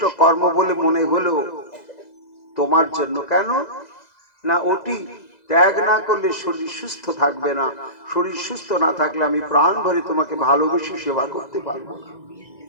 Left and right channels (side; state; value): right; late; 2.0 ms